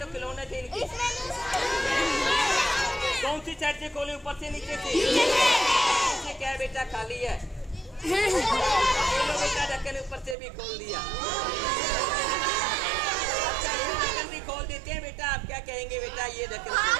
खिलौने थे इनके। कौन सी साइड से खोले? ऊपर से नीचे से? क्या है बेटा? खाली है। बेटा ढक्कन ऊपर से भी खोल दिया। ये देखो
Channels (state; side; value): drops out; left; at 10.4 s